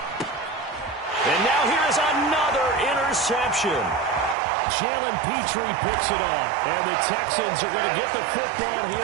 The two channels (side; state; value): left; drops out; at 4.4 s